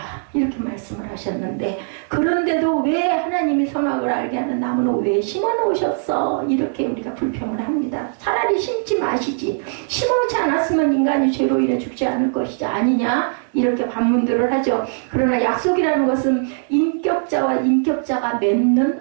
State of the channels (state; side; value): silent; left; digital silence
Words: 이렇게 말씀을 하셨는데, 그런데도 왜 하나님이 선악을 알게 하는 나무는 왜 심어놓으셨어? 이렇게 우리가 불평을 합니다. 차라리 심지 마시지. 심어놓지 않았으면 인간이 죄로 인해 죽지 않을 것이지 아니냐? 이렇게 반문들을 하죠. 그러나 약속이라는 것은 인격자와 인격자가